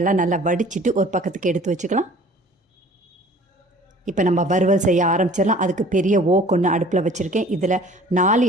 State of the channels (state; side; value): normal; both; correlation 0.49